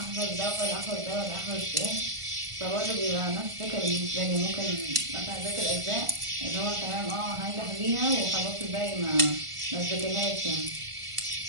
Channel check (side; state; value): left; late; 1.5 ms